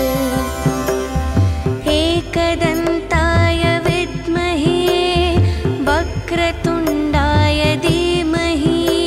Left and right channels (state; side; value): identical; both; correlation 1.00